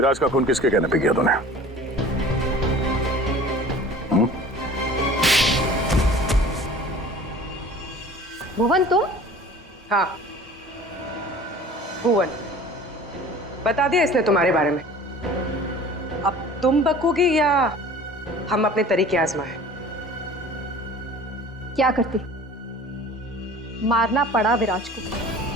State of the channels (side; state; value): both; normal; correlation 0.44